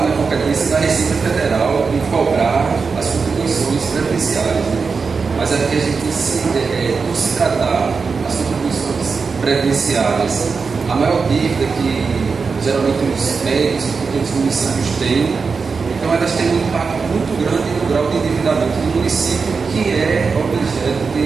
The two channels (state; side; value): quieter; left; 5.0 dB